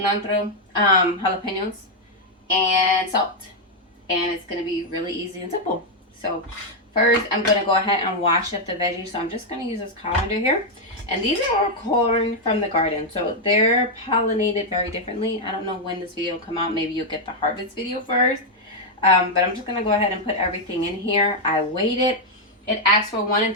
jalapenos, and salt. And it's going to be really easy and simple. So first, I'm going to go ahead and wash up the veggies. So I'm just going to use this colander here. And these are all corn from the garden. So they're pollinated very differently. I don't know when this video will come out. Maybe you'll get the harvest video first. But I'm just going to go ahead and put everything in here. I weighed it. It asks for 1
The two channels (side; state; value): both; normal; correlation 0.00